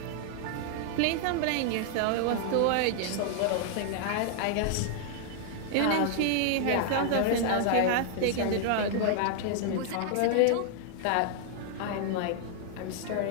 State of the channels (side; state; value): both; different; correlation 0.00